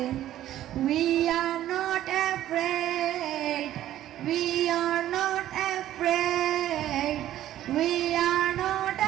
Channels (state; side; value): quieter; left; 12.8 dB